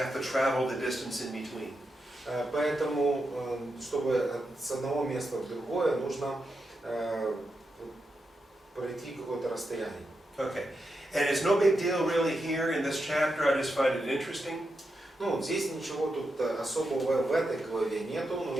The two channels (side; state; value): both; normal; correlation 0.86